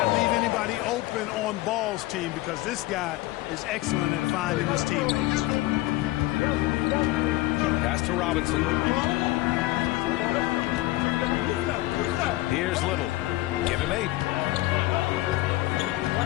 leave anybody open on Ball's team because this guy is excellent at finding his teammates. Pass to Robinson. Here's Little. Give him 8.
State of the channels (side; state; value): right; quieter; 18.4 dB